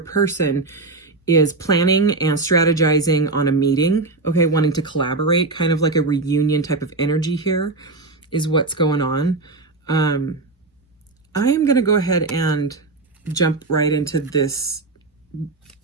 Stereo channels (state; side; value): quieter; left; 3.5 dB